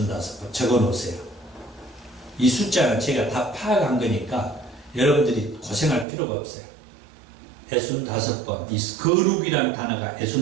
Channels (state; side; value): drops out; left; at 6.1 s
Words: 적어놓으세요. 이 숫자는 제가 다 파악한 거니까 여러분들이 고생할 필요가 없어요. 65번, 이 거룩이라는 단어가